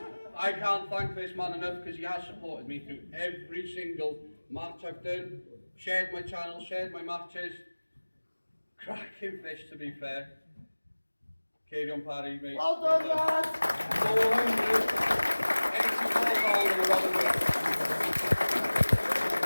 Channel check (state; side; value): inverted; both; correlation -1.00